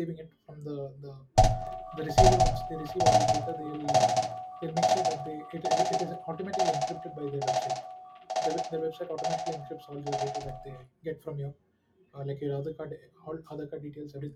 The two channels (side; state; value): both; identical; correlation 1.00